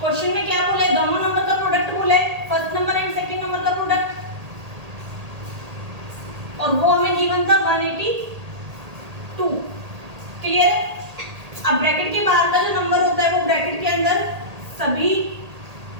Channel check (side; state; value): left; late; 1.8 ms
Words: में क्या बोला है? दोनों नंबर का प्रोडक्ट बोला है, first number and second number का प्रोडक्ट, और वो हमें गिवन था 182। क्लियर है? अब ब्रैकेट के बाहर का जो नंबर होता है वो ब्रैकेट के अंदर सभी